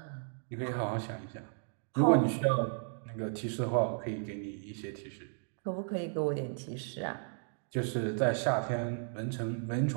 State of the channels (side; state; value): left; silent; digital silence